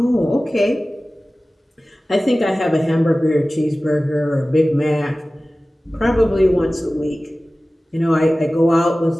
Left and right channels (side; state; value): both; normal; correlation 0.97